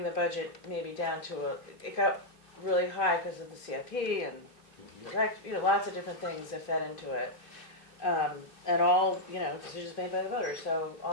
the budget maybe down to it got really high because of the CIP and lots of different things that fed into it. And all, decisions made by the voters, so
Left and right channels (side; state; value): right; late; 2.5 ms